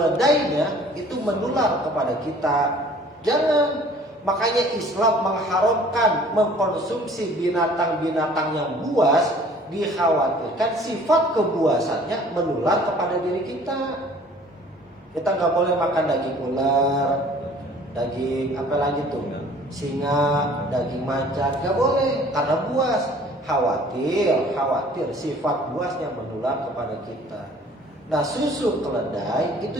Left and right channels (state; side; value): normal; both; correlation 0.52